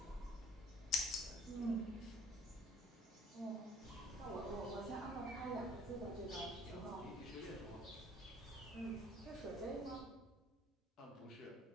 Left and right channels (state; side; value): normal; both; correlation 0.55